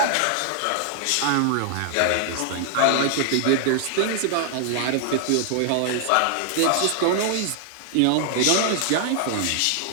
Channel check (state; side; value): different; both; correlation 0.00